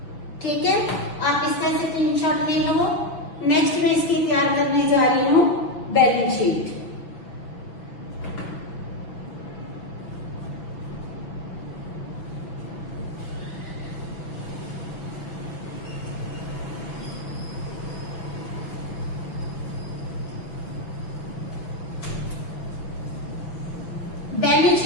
ठीक है। आप इसका से स्क्रीनशॉट ले लो। नेक्स्ट में इसकी तैयार करने जा रही हूं बैलेंस शीट।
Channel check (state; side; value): late; right; 6.1 ms